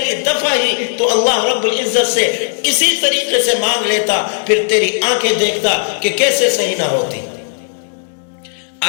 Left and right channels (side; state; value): right; silent; digital silence